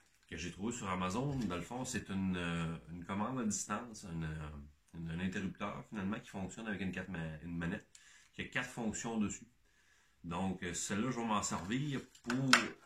que j'ai trouvé sur Amazon, dans le fond, c'est une commande à distance, un interrupteur finalement qui fonctionne avec une manette qui a 4 fonctions dessus. Donc, celle-là, je vais m'en servir pour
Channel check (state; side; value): identical; both; correlation 1.00